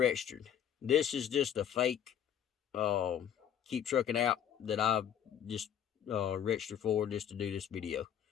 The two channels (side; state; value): right; quieter; 9.4 dB